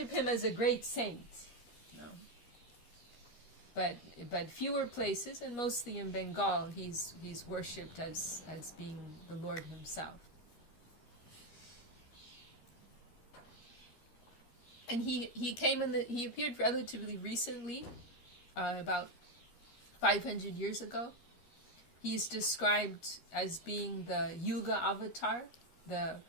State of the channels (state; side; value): late; right; 13 ms